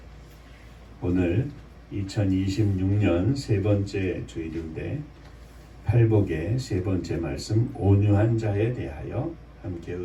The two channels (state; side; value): identical; both; correlation 1.00